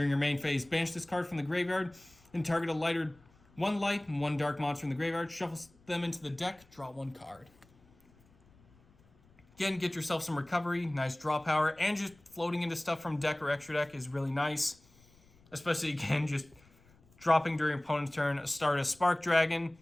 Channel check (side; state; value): left; noise; rumble, 29 dB below the sound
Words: your main phase, banish this card from the graveyard, and target a lighter 1 light and 1 dark monster in the graveyard. Shuffle them into the deck, draw 1 card. Again, get yourself some recovery, nice draw power, and just floating into stuff from deck or extra deck is really nice. Especially, again, just dropping during opponent's turn, start a Spark Dragon.